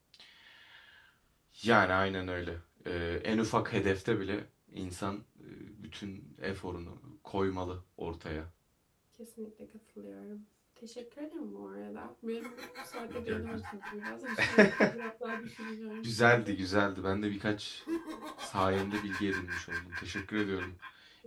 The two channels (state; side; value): identical; both; correlation 1.00